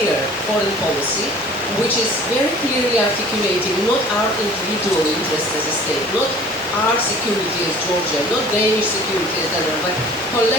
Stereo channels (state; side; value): normal; both; correlation 0.47